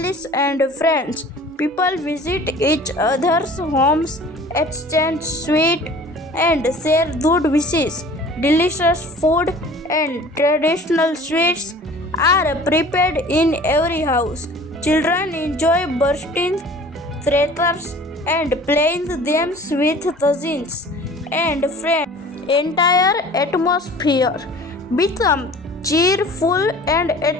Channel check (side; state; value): both; normal; correlation 0.46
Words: and friends. People visit each other's homes, exchange sweets and share good wishes. Delicious food and traditional sweets are prepared in every house. Children enjoy bursting crackers and playing games with cousins and friends. Entire atmosphere become cheerful and